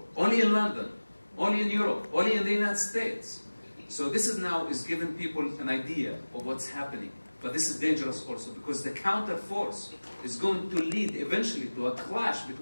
Only in London, only in Europe, only in the United States. So this is now giving people an idea of what's happening. But this is dangerous also because the counter force is going to lead eventually to a clash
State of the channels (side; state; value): both; inverted; correlation -1.00